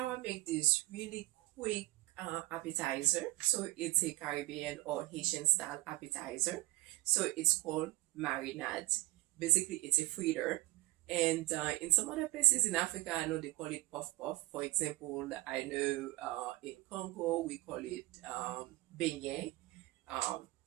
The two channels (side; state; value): left; quieter; 19.4 dB